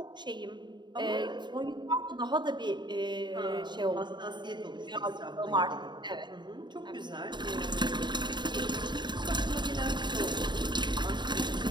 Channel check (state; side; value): late; left; 0.22 ms